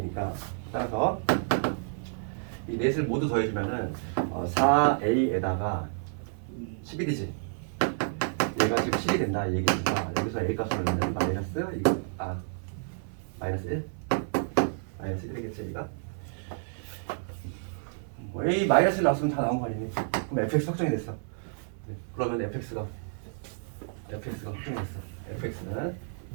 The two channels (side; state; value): left; silent; 58 dB below the other